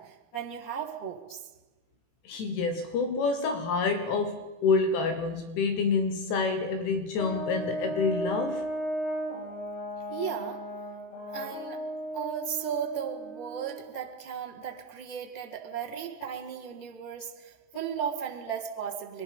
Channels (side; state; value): right; late; 18 ms